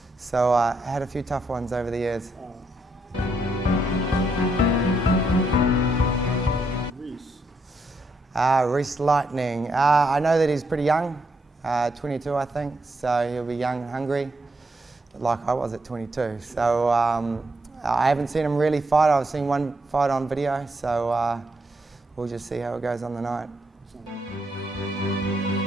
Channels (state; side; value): normal; both; correlation 0.78